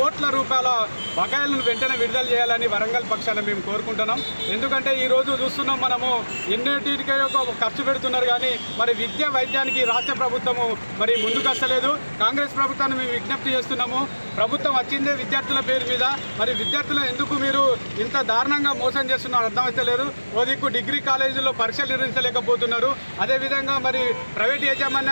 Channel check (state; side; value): inverted; both; correlation -1.00